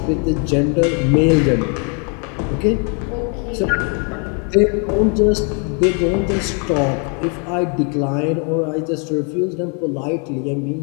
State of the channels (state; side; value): quieter; right; 37.7 dB